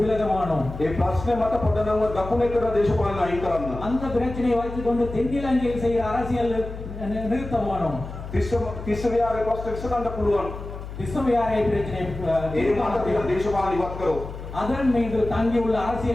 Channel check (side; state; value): left; noise; hum, 10 dB below the sound